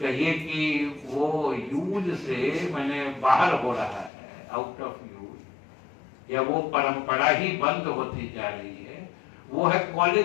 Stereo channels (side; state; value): right; drops out; at 4.1 s